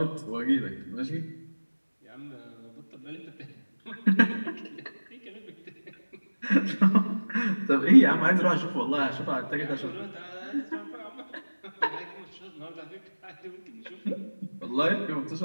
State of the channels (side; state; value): both; inverted; correlation -1.00